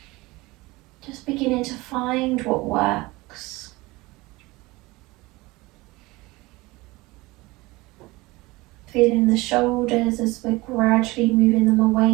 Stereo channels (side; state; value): left; quieter; 21.7 dB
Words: Just beginning to find what works. Feeling the shoulders as we're gradually moving them